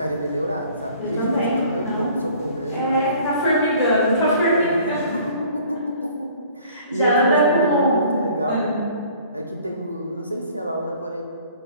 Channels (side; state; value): both; inverted; correlation -0.53